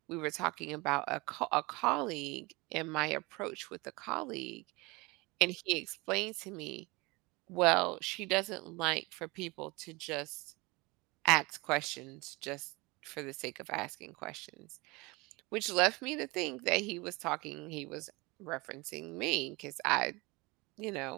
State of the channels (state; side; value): quieter; left; 24.8 dB